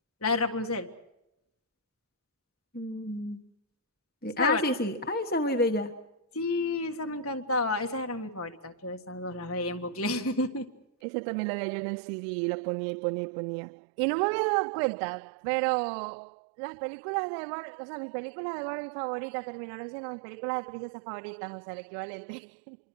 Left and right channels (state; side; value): drops out; left; at 10.9 s